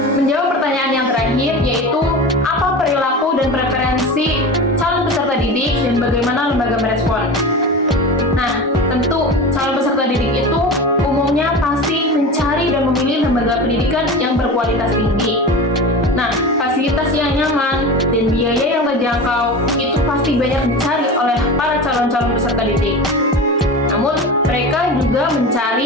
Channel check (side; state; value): both; normal; correlation 0.30